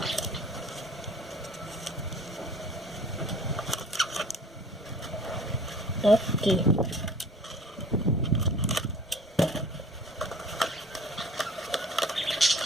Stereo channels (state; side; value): normal; both; correlation 0.48